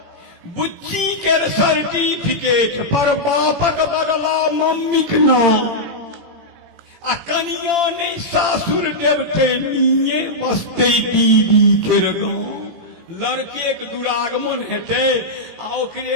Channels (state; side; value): late; left; 18 ms